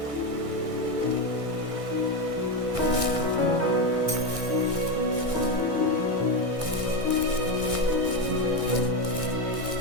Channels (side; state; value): left; late; 1.6 ms